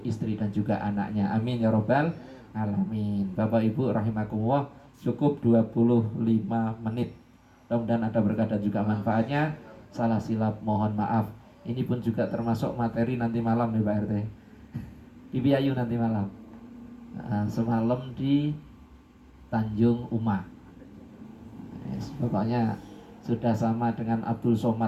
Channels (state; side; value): identical; both; correlation 1.00